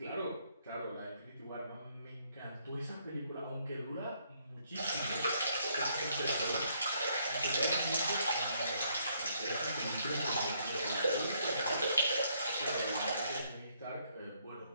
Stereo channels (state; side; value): inverted; both; correlation -0.70